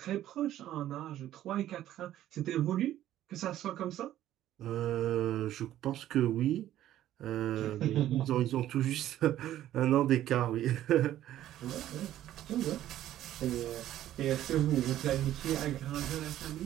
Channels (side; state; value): left; quieter; 12.8 dB